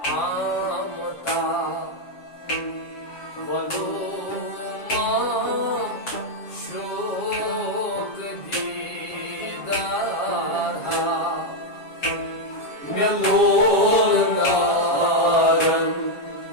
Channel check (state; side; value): late; right; 7.4 ms